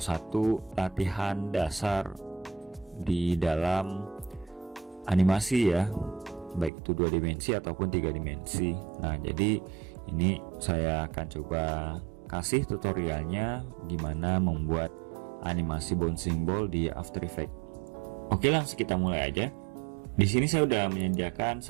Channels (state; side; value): drops out; left; at 6.7 s